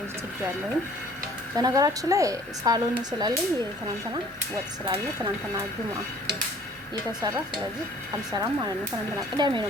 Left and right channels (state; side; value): normal; both; correlation 0.53